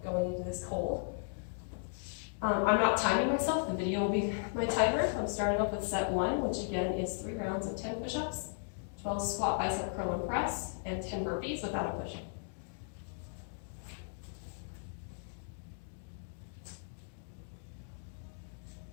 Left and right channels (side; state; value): right; silent; digital silence